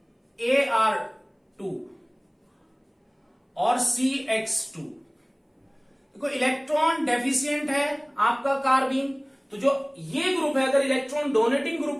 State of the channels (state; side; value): identical; both; correlation 1.00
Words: और CX2। देखो इलेक्ट्रॉन डेफिशिएंट है आपका कार्बीन, तो जो ये ग्रुप है अगर इलेक्ट्रॉन डोनेटिंग